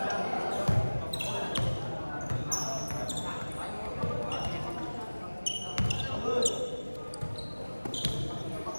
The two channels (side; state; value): both; inverted; correlation -1.00